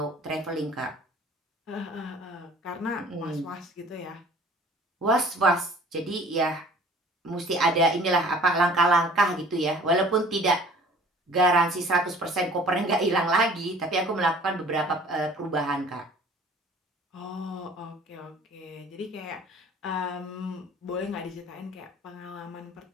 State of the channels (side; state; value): both; normal; correlation 0.49